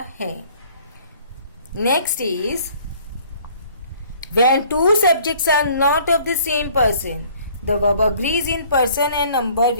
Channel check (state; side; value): inverted; both; correlation -0.56